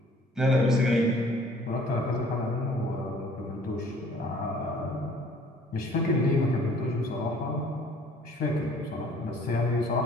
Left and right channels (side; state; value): both; normal; correlation 0.55